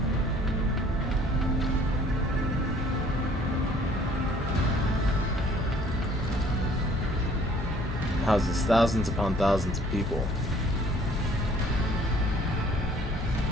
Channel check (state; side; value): normal; both; correlation 0.57